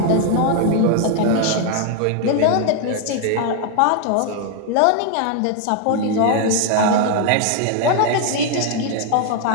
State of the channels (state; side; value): different; both; correlation 0.00